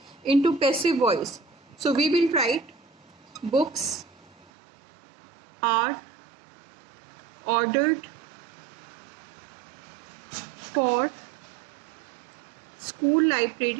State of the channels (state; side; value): drops out; left; at 4.5 s